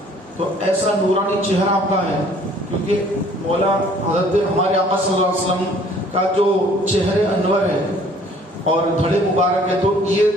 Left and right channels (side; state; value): both; normal; correlation 0.56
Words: تو ایسا نورانی چہرہ آپ کا ہے, کیونکہ مولا حضرت ہمارے آقا صلی اللہ علیہ وسلم کا جو چہرے انور ہے اور دھڑے مبارک ہے, تو یہ